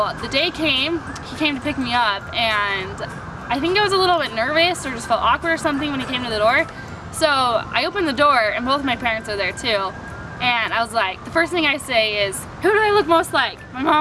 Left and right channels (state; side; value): identical; both; correlation 1.00